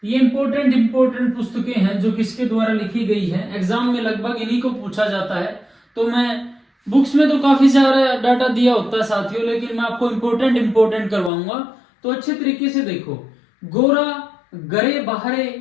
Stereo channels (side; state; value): right; drops out; at 11.3 s